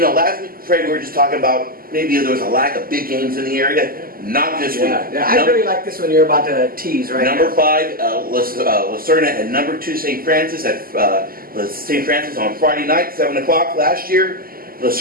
week, Fred, we were just talking about maybe there was a lack of big games in the area. Not this week. Yeah, I really like this one you're about to tease, right? Number 5, Serna, and number 2, St. Francis at St. Francis on Friday night, 7 o'clock last year.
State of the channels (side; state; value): left; late; 0.42 ms